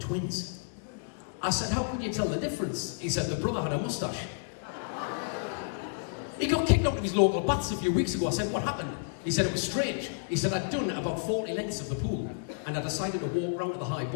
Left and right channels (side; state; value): right; silent; 57 dB below the other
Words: I said, how could you tell the difference? He said, the brother had a moustache. He got kicked out of his local baths a few weeks ago. I said, what happened? He said, it was strange. He said, I'd done about 40 lengths of the pool, and I decided to walk round to the high